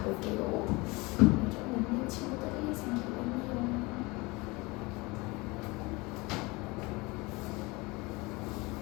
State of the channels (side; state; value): right; quieter; 24.4 dB